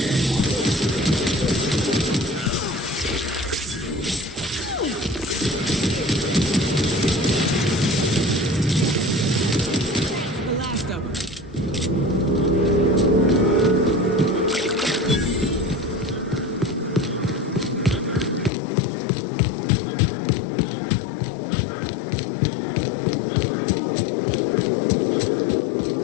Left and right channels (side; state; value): right; drops out; at 18.5 s